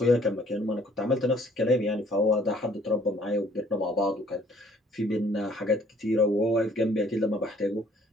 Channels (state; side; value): normal; both; correlation 0.60